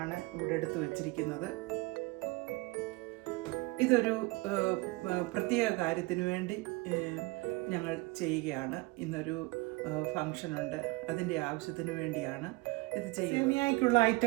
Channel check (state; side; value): quieter; left; 23.7 dB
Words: ഇവിടെ എടുത്തു വച്ചിരിക്കുന്നത്. ഇതൊരു പ്രത്യേക കാര്യത്തിന് വേണ്ടി ഞങ്ങൾ ചെയ്യുകയാണ്. ഇന്നൊരു ഫങ്ഷനുണ്ട്, അതിൻ്റെ ആവശ്യത്തിന് വേണ്ടിയാണ് ഇത് ചെയ്യുന്നത്. സേമിയയ്ക്കുള്ള